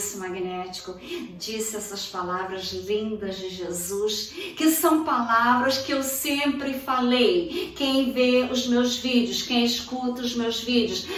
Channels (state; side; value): identical; both; correlation 1.00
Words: magnético, disse essas palavras lindas de Jesus, que são palavras que eu sempre falei. Quem vê os meus vídeos, quem escuta os meus vídeos,